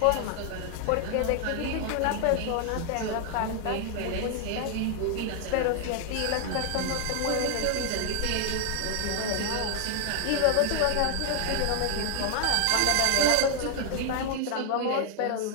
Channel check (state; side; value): different; both; correlation 0.00